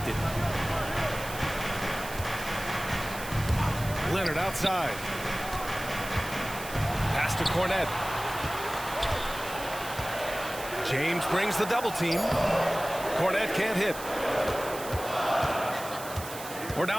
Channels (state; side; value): noise; right; hiss, 12 dB below the sound